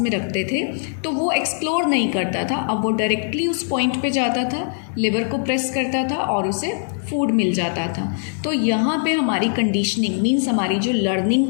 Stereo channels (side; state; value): right; silent; 65 dB below the other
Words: रखते थे तो वो एक्सप्लोर नहीं करता था. अब वो डायरेक्टली उस पॉइंट पे जाता था, लेवर को प्रेस करता था और उसे फूड मिल जाता था. तो यहाँ पे हमारी कंडीशनिंग मीन्स हमारी जो लर्निंग